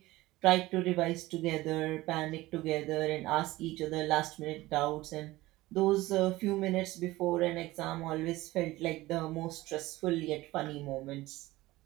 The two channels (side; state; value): left; quieter; 18.4 dB